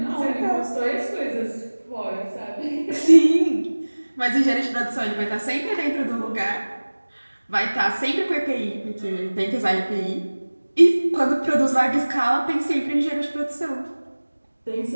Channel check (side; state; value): both; inverted; correlation -1.00